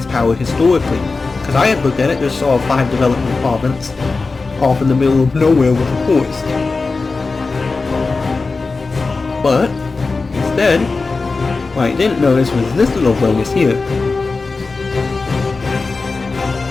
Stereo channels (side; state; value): right; quieter; 4.0 dB